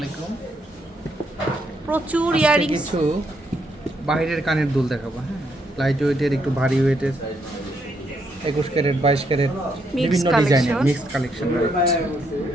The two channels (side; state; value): both; normal; correlation 0.76